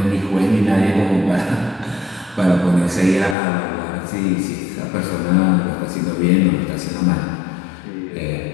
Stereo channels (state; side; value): drops out; right; at 3.4 s